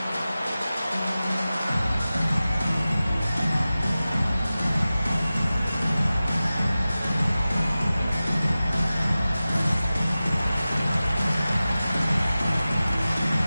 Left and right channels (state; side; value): inverted; both; correlation -0.96